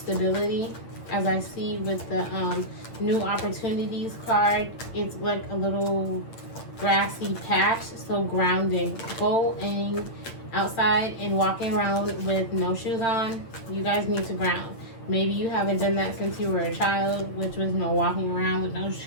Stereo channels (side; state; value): right; late; 8.9 ms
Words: As I see with the new opportunities card, it's like a little grassy patch, so grounding. Going outside and walking around with no shoes on, you guys need to ground. Maybe you haven't done that since you were a child, which was walking around with no